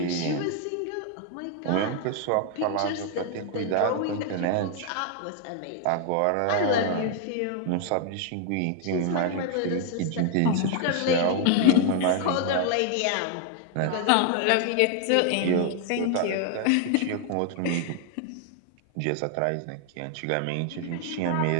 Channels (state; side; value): different; both; correlation 0.00